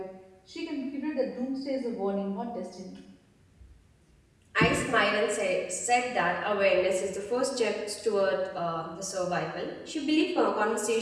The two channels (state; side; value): identical; both; correlation 1.00